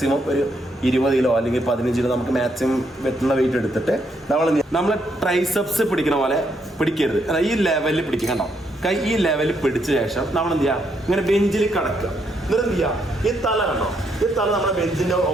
ഒരു 20 കിലോ അല്ലെങ്കിൽ 15 കിലോ നമുക്ക് മാക്സിമം വെറ്റുന്ന വെയിറ്റ് എടുത്തിട്ട് നമ്മൾ ട്രൈസെപ്സ് പിടിക്കുന്ന പോലെ പിടിക്കരുത്. ഈ ലെവലിൽ പിടിക്കുക. കണ്ടോ, കൈ ഈ ലെവലിൽ പിടിച്ച ശേഷം നമ്മൾ എന്ത് ചെയ്യുക, ഇങ്ങനെ ബെഞ്ചിൽ കിടക്കുക. എന്നിട്ട് എന്ത് ചെയ്യുക, ഈ തല കണ്ടോ, ഈ തല നമ്മുടെ ബെഞ്ചിൻ്റെ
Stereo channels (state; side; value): normal; both; correlation 0.75